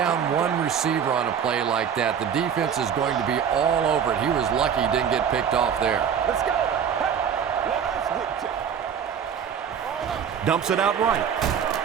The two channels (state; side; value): quieter; left; 7.8 dB